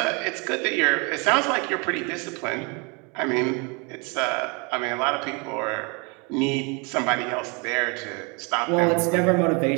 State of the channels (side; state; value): left; quieter; 31.6 dB